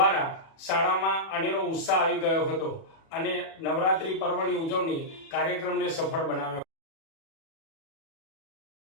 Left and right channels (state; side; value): late; right; 37 ms